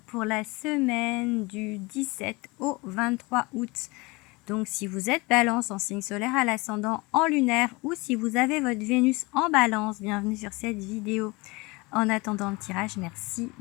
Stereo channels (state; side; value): quieter; right; 25.0 dB